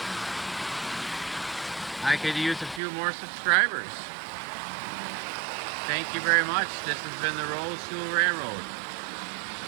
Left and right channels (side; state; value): left; drops out; at 2.8 s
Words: I could use a few more subscribers. Thank you very much. This has been the Rolls Jewel Railroad.